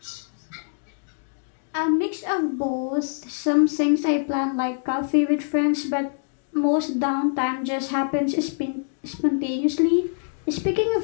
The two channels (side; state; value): right; silent; digital silence